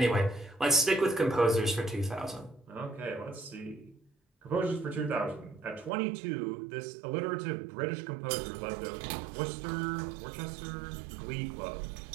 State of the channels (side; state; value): left; drops out; at 5.9 s